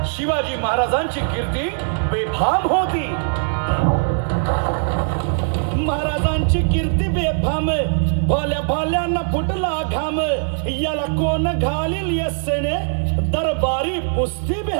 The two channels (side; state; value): left; silent; digital silence